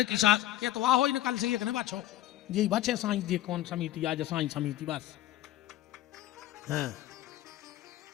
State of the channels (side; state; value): right; quieter; 14.1 dB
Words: की सास के तो वाह हो कल से एक ने बचो जी बचे साई जी कौन समिति आज साई समिति बस हाँ